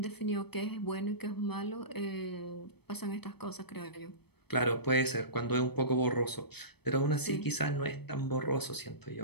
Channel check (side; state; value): right; late; 0.97 ms